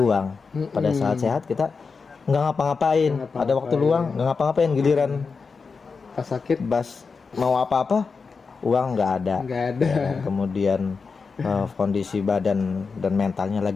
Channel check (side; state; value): right; quieter; 4.9 dB